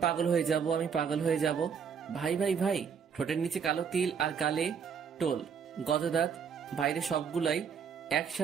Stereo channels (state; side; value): quieter; left; 6.8 dB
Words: পাগল হয়ে যাব, আমি পাগল হয়ে যাব। ভাই ভাই ভাই, ঠোঁটের নিচে কালো তিল আর গালে টোল, গজদাঁত, বাইরে সবগুলাই